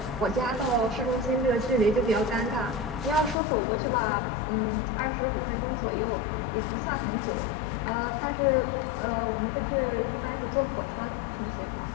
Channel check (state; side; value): drops out; right; at 3.4 s